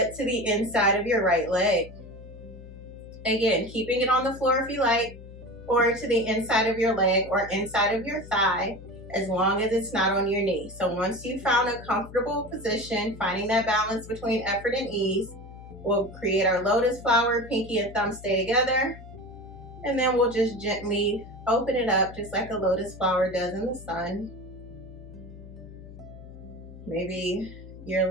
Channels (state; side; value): noise; left; hum, 16 dB below the sound